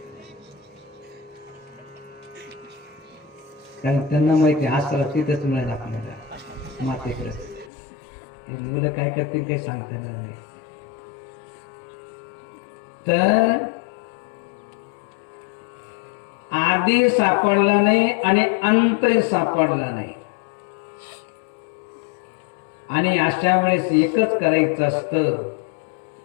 कारण त्यांना माहिती आसरा तिथेच मिळेल आपल्याला, मातेकडे. मुलं काय करतील काही सांगता येणार नाही. तर आधी सापडला नाही आणि अंतही सापडला नाही, आणि अशा वेळेस एकच करायचं असतं,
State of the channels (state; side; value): drops out; right; at 7.7 s